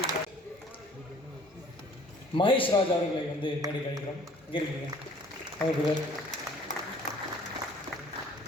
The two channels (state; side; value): normal; both; correlation 0.54